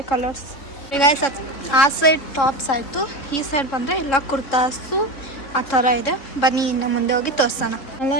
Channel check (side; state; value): right; late; 3.6 ms